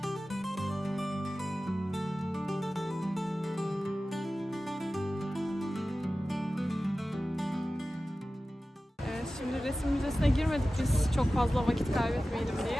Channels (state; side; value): normal; both; correlation 0.95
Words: Şimdi resim müzesine girmedik biz çok fazla vakit kaybetmeyelim